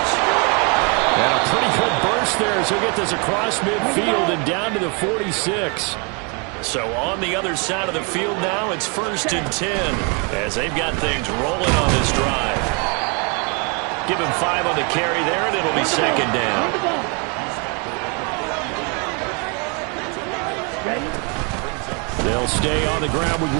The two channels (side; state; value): left; quieter; 34.1 dB